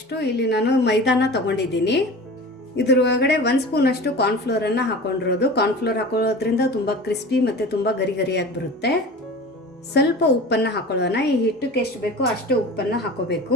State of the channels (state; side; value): normal; both; correlation 0.36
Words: ಇಲ್ಲಿ ನಾನು ಮೈದಾನ ತೊಗೊಂಡಿದ್ದೀನಿ. ಇದ್ರ ಒಳಗಡೆ 1 ಸ್ಪೂನಷ್ಟು ಕಾರ್ನ್ಫ್ಲೋರನ್ನು ಹಾಕೊಂಡಿರೋದು. ಕಾರ್ನ್ಫ್ಲೋರ್ ಹಾಕೊಳ್ಳೋದ್ರಿಂದ ತುಂಬ ಕ್ರಿಸ್ಪಿ ಮತ್ತು ತುಂಬ ಗರಿಯಾಗಿ ಬರುತ್ತೆ. ಸ್ವಲ್ಪ ಉಪ್ಪನ್ನು ಹಾಕೊಳ್ಳೋಣ. ಈ ಹಿಟ್ಟಕ್ಕೆ ಎಷ್ಟು ಬೇಕೋ ಅಷ್ಟು ಉಪ್ಪನ್ನು